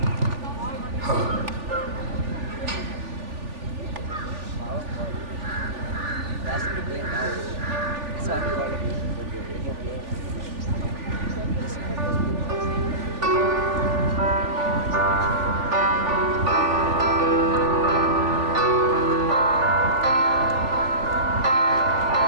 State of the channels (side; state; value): left; late; 3.4 ms